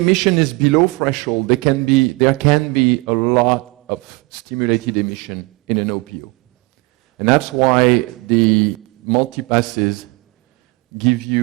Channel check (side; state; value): left; quieter; 25.0 dB